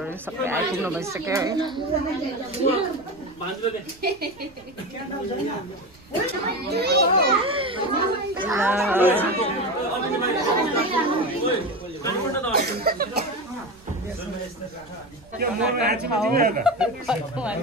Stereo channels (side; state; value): right; noise; rumble, 26 dB below the sound